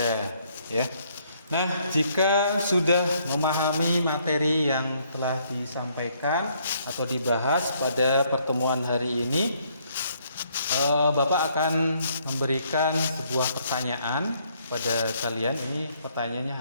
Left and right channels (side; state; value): both; inverted; correlation -0.68